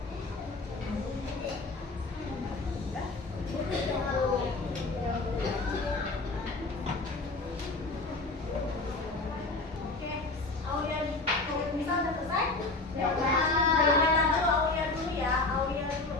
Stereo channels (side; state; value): right; quieter; 3.3 dB